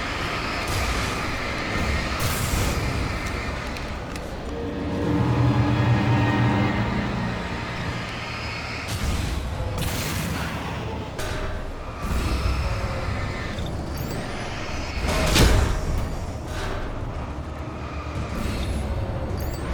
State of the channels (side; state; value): both; identical; correlation 1.00